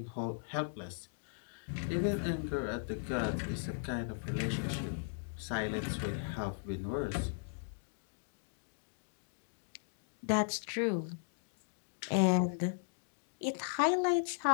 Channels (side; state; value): right; silent; digital silence